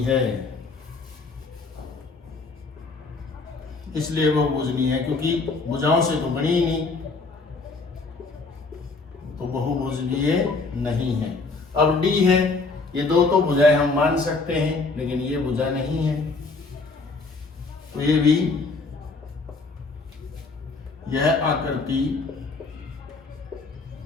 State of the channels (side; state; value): right; quieter; 3.9 dB